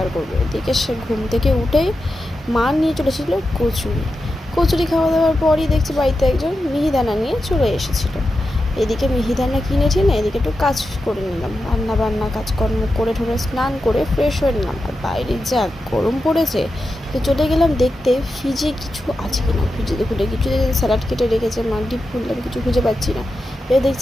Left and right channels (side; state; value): both; normal; correlation 0.90